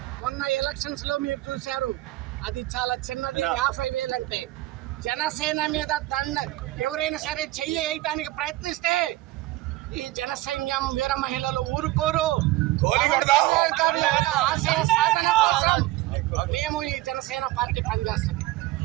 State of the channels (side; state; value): left; quieter; 17.6 dB